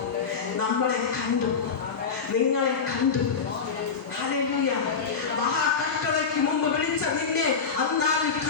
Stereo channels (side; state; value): right; quieter; 5.7 dB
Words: നമ്മളെ കണ്ടു, നിങ്ങളെ കണ്ടു. ഹല്ലേലൂയ. മഹാകഷ്ടതയ്ക്ക് മുമ്പ് വിളിച്ച നിന്നെ അന്നാളിൽ